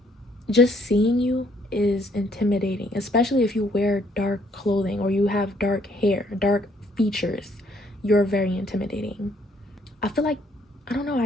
just seeing you is intimidating, especially if you wear dark clothing or you have dark hair, dark features. You're very intimidating. I feel like, I don't know, I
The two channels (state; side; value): normal; both; correlation 0.66